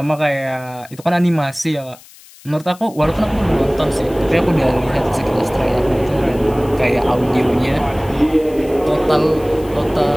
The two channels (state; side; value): noise; left; hiss, 23 dB below the sound